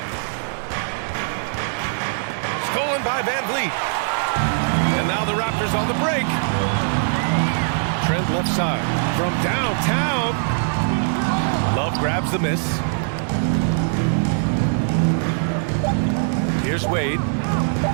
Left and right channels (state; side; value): silent; left; digital silence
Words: Stolen by Van Vliet. And now the Raptors on the break. Trent left side. From downtown. Love grabs the miss. Here's Wade.